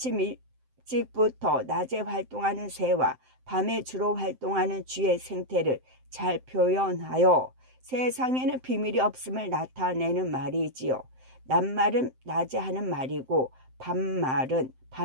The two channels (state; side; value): late; left; 7.7 ms